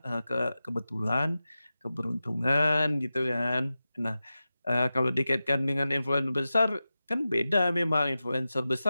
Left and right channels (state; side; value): inverted; both; correlation -0.93